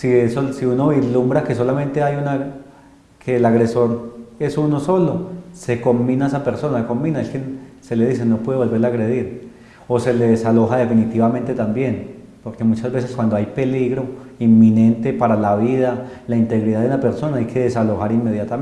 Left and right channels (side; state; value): both; identical; correlation 1.00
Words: uno vislumbra que solamente que el agresor es uno solo, se combina esa persona, es que se le dice no puede volver a agredir, o se le desaloja definitivamente también, porque muchas veces cuando hay peligro inminente para la vida, la integridad de una persona, hay que desalojar